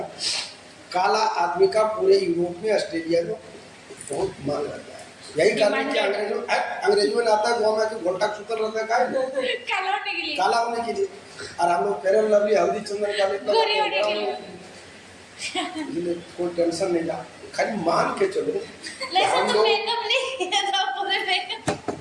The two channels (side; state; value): both; identical; correlation 1.00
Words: काला आदमी का पूरे यूरोप में, ऑस्ट्रेलिया में बहुत मांग रहता है। यही कारण कि अंग्रेजों में आता है गोवा में कि घोटा सुतर रहता है काला होने के लिए। और हम लोग फेयर एंड लवली, हल्दी, चंदन का कोई टेंशन नहीं था, खाली मान के चलो। हम लोग